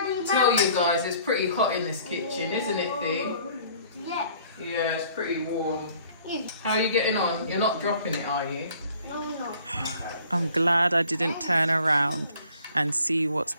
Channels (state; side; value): inverted; both; correlation -0.55